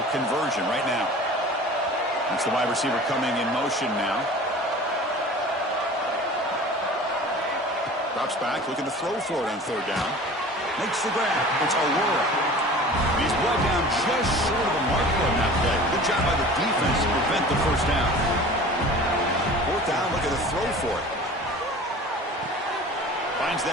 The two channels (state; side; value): normal; both; correlation 0.41